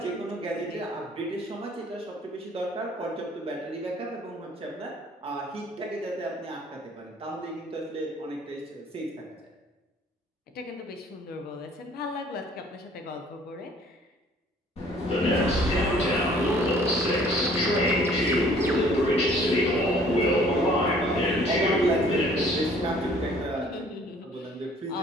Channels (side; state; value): both; normal; correlation 0.56